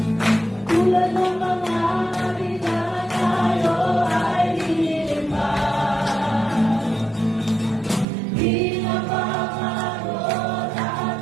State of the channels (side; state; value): left; drops out; at 8.1 s